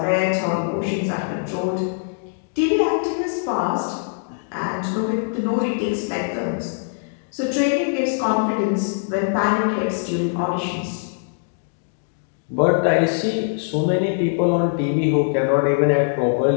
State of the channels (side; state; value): right; silent; digital silence